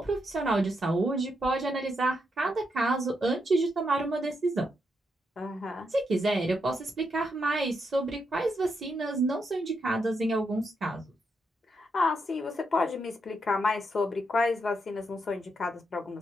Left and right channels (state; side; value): normal; both; correlation 0.81